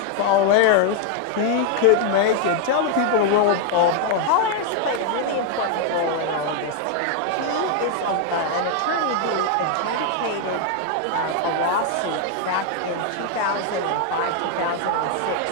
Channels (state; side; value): different; both; correlation 0.00